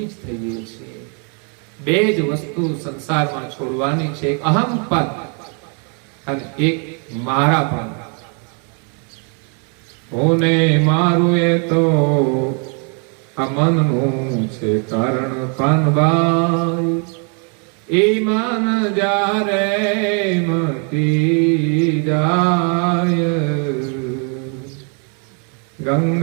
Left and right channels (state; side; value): quieter; left; 38.8 dB